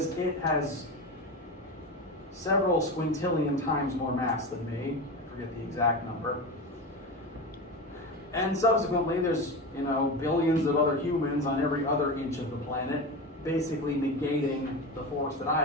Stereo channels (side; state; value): both; normal; correlation 0.24